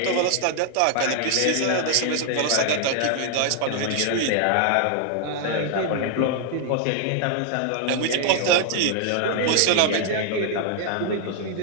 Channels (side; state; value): both; different; correlation 0.00